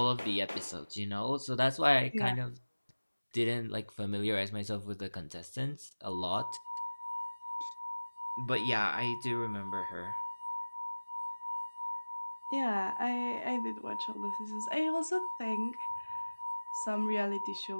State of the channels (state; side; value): inverted; both; correlation -1.00